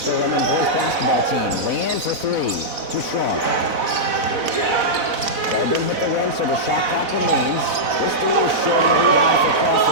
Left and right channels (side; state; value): left; late; 4.0 ms